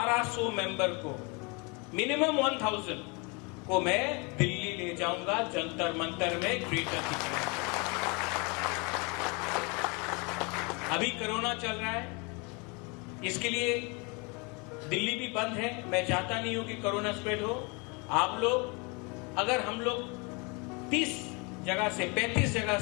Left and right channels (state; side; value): quieter; right; 30.4 dB